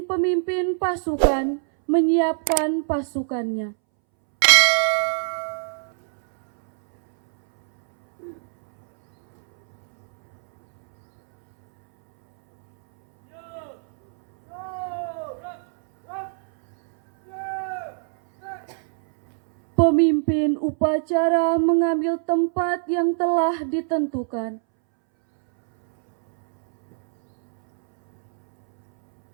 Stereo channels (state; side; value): silent; left; 64 dB below the other